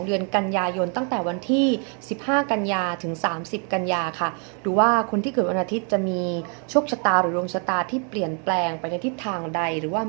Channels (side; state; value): left; quieter; 39.9 dB